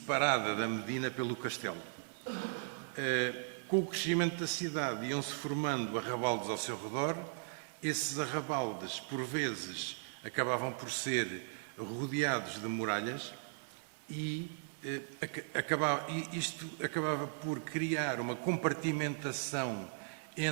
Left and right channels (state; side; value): silent; left; digital silence